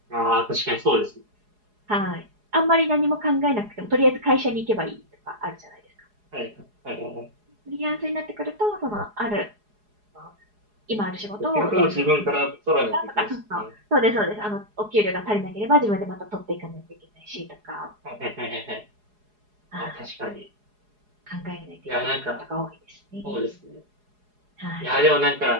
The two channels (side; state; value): left; late; 4.8 ms